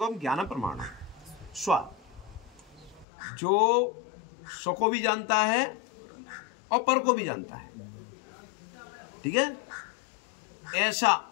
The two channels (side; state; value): right; drops out; at 3.1 s